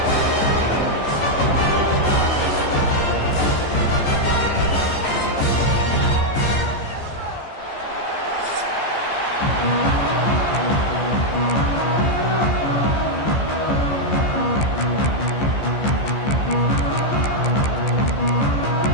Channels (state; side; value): late; right; 14 ms